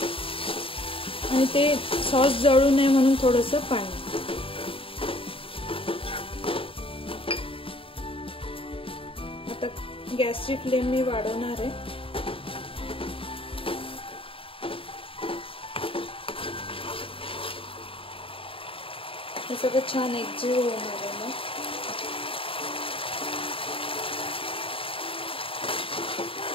आणि ते सॉस जळू नये म्हणून थोडंसं पाणी। आता गॅसची फ्लेम मी वाढवणार आहे। हे सगळं छान एकजीव होणार आहे ना।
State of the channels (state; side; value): late; right; 0.26 ms